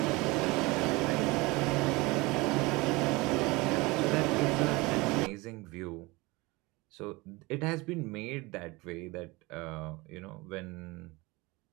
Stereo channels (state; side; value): quieter; left; 23.4 dB